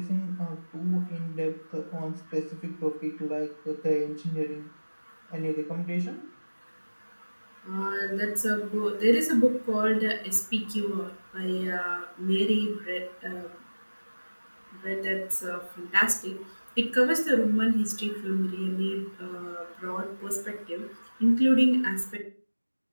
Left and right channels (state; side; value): inverted; both; correlation -1.00